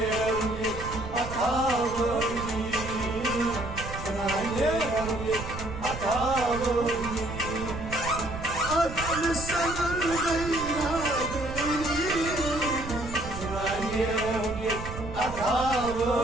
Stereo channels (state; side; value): noise; right; rumble, 9 dB below the sound